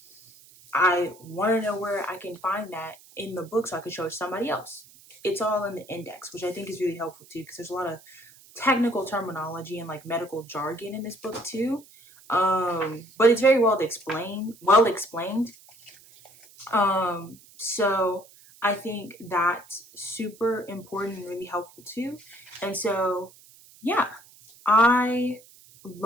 I want to know where I can find that in the book so I can show it to somebody else. It's all in the index, which I think is really helpful too, because there's a lot of technical terminology and like medical jargon in this book too. But it's very well explained. So I think that's super important and really helpful too. And so, yeah, I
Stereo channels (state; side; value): noise; right; hiss, 24 dB below the sound